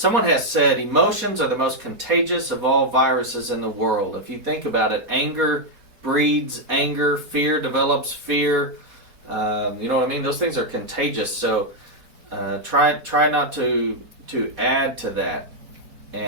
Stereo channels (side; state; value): left; late; 4.2 ms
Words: has said emotions are the most contagious of all viruses in the world. If you think about it, anger breeds anger, fear develops fear. You know what I mean? Those things are contagious. So try not to add to that.